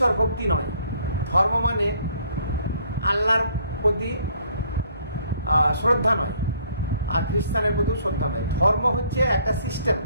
ভক্তি নয়, ধর্ম মানে আল্লাহর প্রতি শ্রদ্ধা নয়, আর খ্রিস্টানের প্রতিও শ্রদ্ধা নয়। ধর্ম হচ্ছে একটা সিস্টেম,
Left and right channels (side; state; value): both; inverted; correlation -0.62